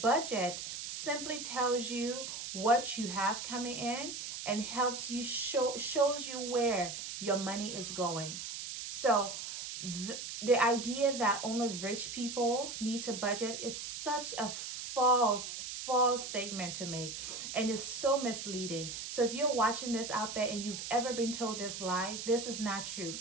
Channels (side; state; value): right; noise; hiss, 7 dB below the sound